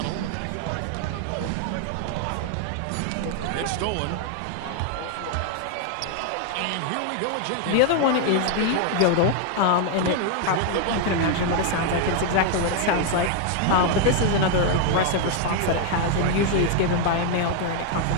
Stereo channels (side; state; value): both; different; correlation 0.01